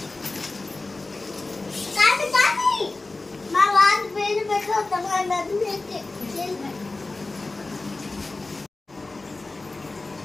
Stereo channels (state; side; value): quieter; right; 3.3 dB